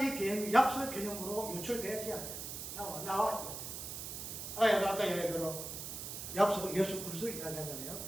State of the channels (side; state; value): right; noise; hiss, 7 dB below the sound